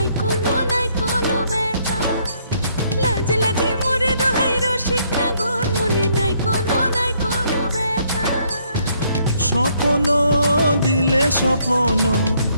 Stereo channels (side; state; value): both; inverted; correlation -0.69